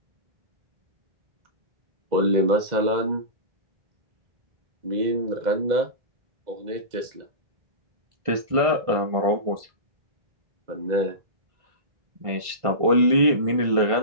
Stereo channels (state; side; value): late; left; 1.5 ms